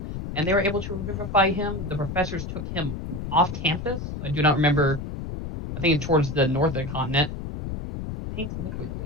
and they were able to revivify him. The professors took him off campus. I do not remember. I think towards the north of the continent. Pink liquid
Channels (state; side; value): noise; left; rumble, 6 dB below the sound